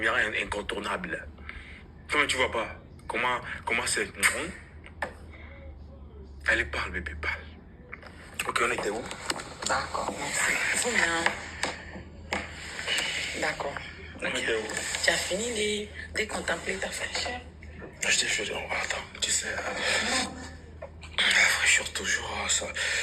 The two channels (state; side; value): identical; both; correlation 1.00